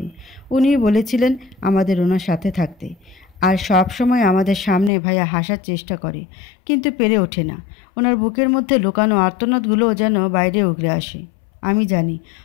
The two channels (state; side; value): drops out; right; at 4.9 s